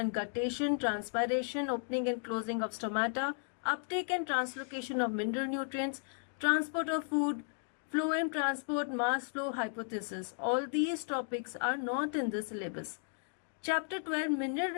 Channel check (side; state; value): right; silent; digital silence